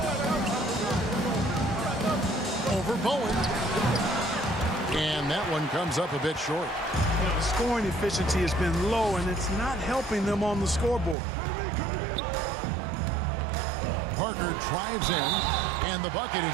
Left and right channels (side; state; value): left; drops out; at 11.2 s